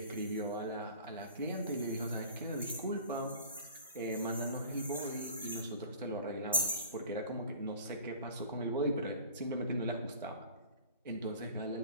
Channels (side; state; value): both; inverted; correlation -0.44